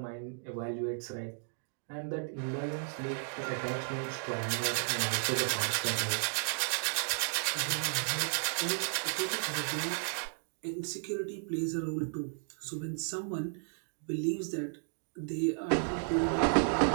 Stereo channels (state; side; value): silent; left; digital silence